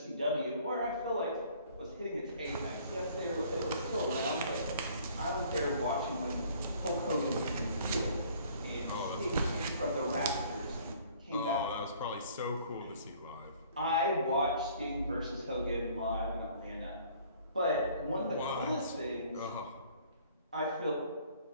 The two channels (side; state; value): both; inverted; correlation -0.56